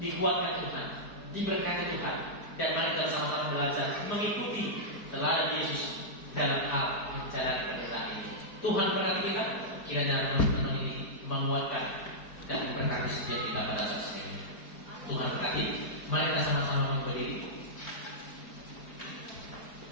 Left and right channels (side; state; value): right; late; 4.6 ms